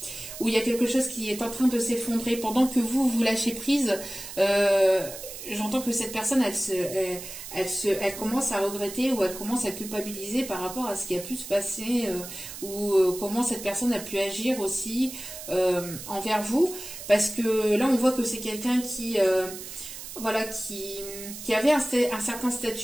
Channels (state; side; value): noise; right; hiss, 11 dB below the sound